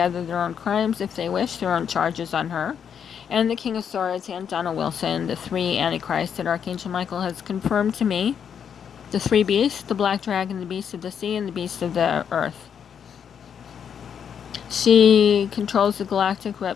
their own crimes if they wish, their own charges on her. And the King of Swords and Donald Wilson, the three antichrists that Archangel Michael has confirmed to me. The three beasts, the black dragon, the beast of the sea, and the beast of the earth. She controls the galactic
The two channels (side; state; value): right; quieter; 7.8 dB